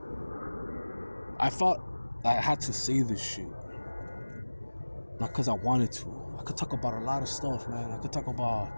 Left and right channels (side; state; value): both; inverted; correlation -1.00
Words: I thought I had to say this shit. Not because I wanted to. I could talk about a lot of stuff, man. I could talk about,